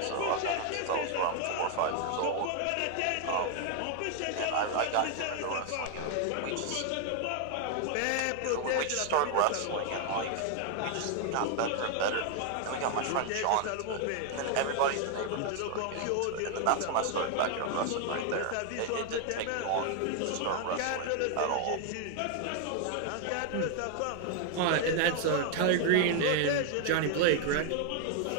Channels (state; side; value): different; both; correlation 0.00